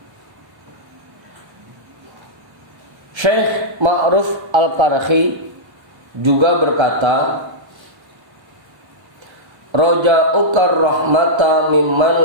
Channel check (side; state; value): left; late; 1.4 ms